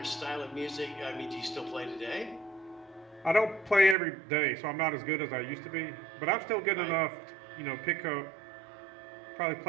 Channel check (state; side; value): drops out; left; at 4.0 s